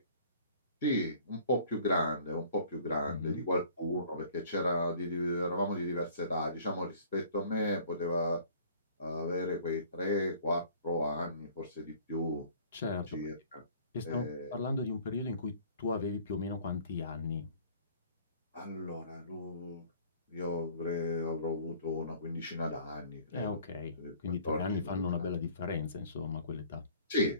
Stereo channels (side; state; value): both; inverted; correlation -0.52